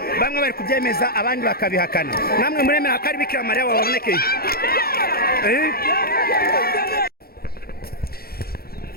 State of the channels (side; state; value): right; late; 0.44 ms